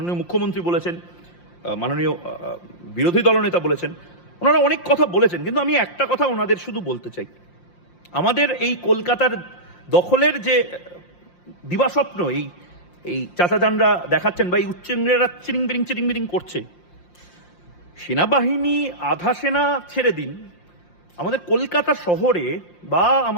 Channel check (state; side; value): late; right; 5.7 ms